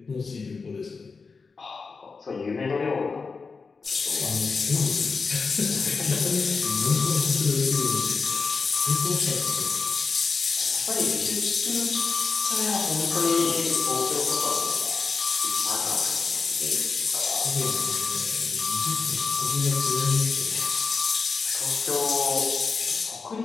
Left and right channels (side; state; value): right; quieter; 4.7 dB